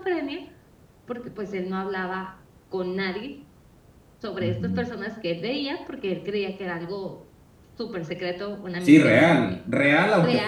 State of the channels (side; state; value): both; identical; correlation 1.00